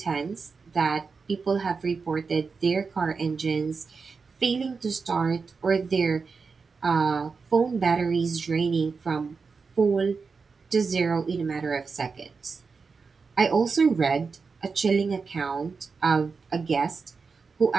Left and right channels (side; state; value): left; quieter; 4.9 dB